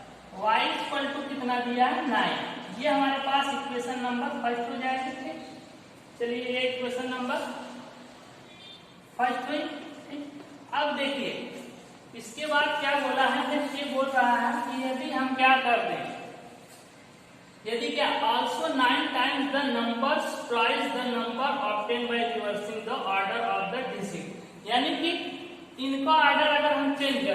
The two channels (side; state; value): both; identical; correlation 1.00